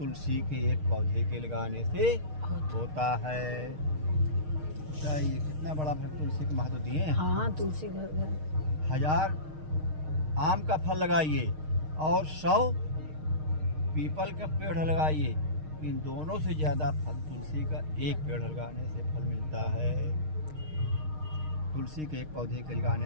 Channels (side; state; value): left; late; 6.5 ms